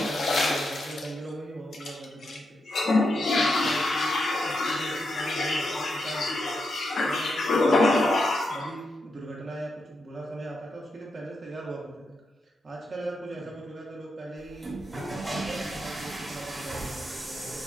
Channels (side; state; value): both; normal; correlation 0.84